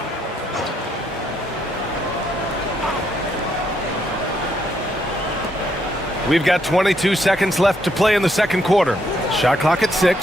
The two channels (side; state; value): both; normal; correlation 0.74